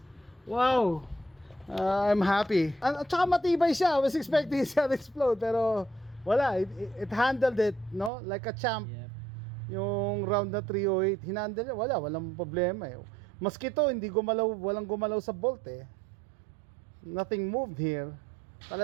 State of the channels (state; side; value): drops out; left; at 8.1 s